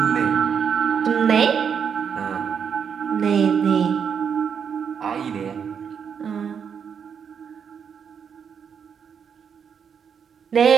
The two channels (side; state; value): left; quieter; 7.1 dB